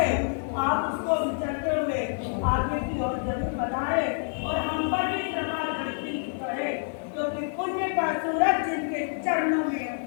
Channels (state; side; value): silent; right; digital silence